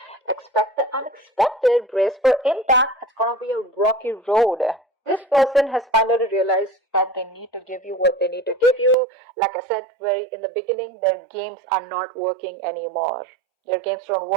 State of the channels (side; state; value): left; drops out; at 9.0 s